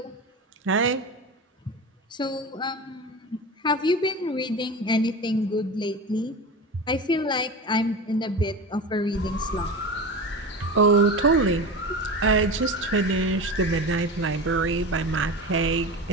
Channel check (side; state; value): both; normal; correlation 0.27